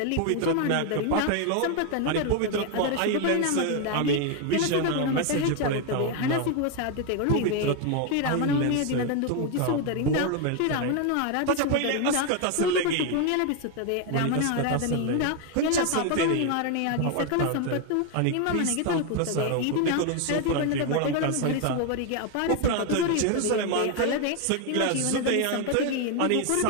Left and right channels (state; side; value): different; both; correlation 0.01